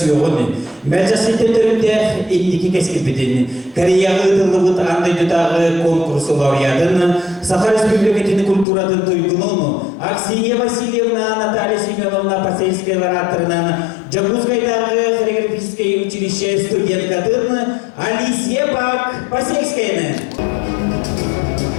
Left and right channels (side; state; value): right; drops out; at 8.7 s